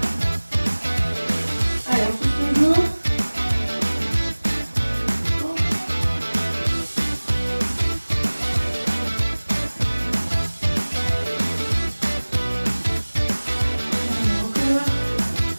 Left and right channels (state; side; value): inverted; both; correlation -1.00